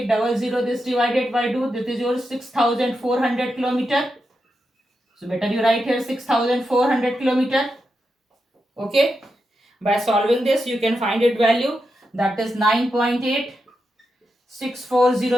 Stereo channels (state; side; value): normal; both; correlation 0.87